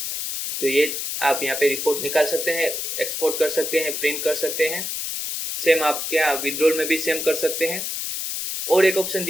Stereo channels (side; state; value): left; noise; hiss, 4 dB below the sound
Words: तो ये आप यहाँ पे रिपोर्ट निकाल सकते हैं, एक्सपोर्ट कर सकते हैं, प्रिंट कर सकते हैं। सेम आप क्या विड्रॉल में भी सेम कर सकते हैं। और एक ऑप्शन